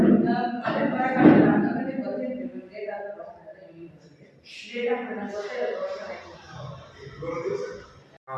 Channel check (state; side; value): identical; both; correlation 1.00